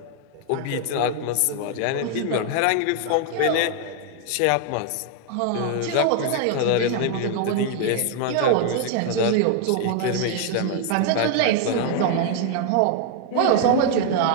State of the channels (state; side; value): different; both; correlation 0.00